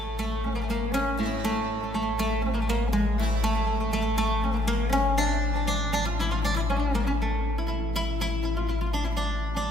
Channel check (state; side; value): normal; both; correlation 0.68